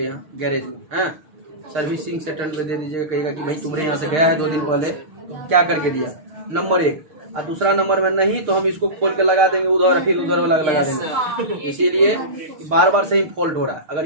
यहाँ गैरेज में, हाँ सर्विसिंग सेंटर पे दे दीजिएगा। कहेगा कि भाई तुम्हारे यहाँ से गया है 2 दिन पहले, क्या करके दिया, नंबर 1। और दूसरा नंबर में नहीं तो हम इसको खोल के लगा देंगे उधर, फिर उधर वाला लगा देंगे। इसीलिए बार बार से ही फॉल्ट हो रहा है। अगर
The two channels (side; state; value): left; late; 6.5 ms